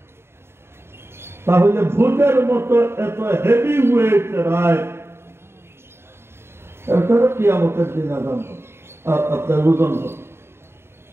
তাহলে ভূতের মতো এত হেভি ওয়েট রায়, এটারও কিয়ামতের দিন আজান হবে, আপনার ওজন হবে।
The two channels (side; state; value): left; late; 0.12 ms